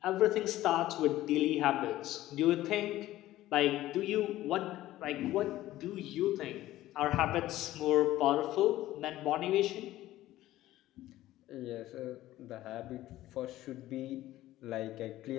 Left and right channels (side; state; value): right; quieter; 15.2 dB